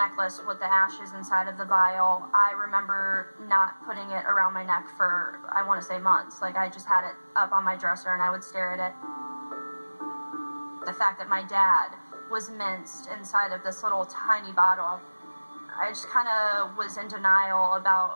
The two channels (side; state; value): both; inverted; correlation -1.00